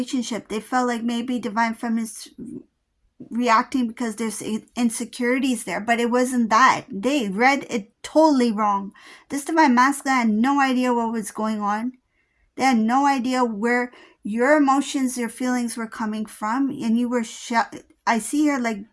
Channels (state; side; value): identical; both; correlation 1.00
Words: They felt like maybe divine feminine's reacting because there's insecurities there, but it wasn't that. They read it totally wrong. This divine masculine had no idea what was going on. They had no idea where your emotions, your feelings were coming from, and you were I see her like